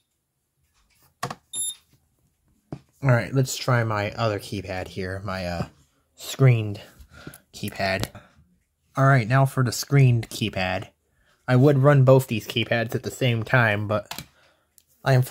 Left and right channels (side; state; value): both; identical; correlation 1.00